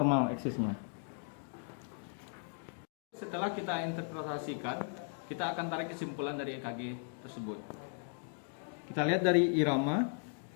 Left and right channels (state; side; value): silent; right; 53 dB below the other